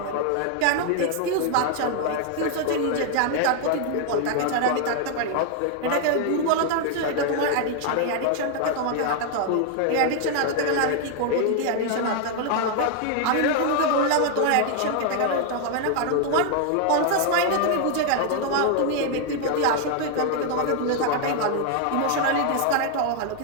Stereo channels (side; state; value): both; different; correlation 0.00